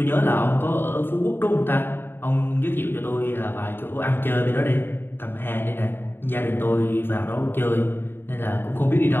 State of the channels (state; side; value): late; right; 0.10 ms